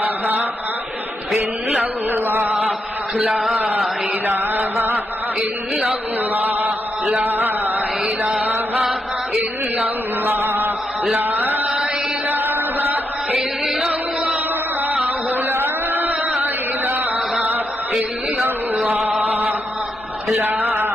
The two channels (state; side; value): normal; both; correlation 0.82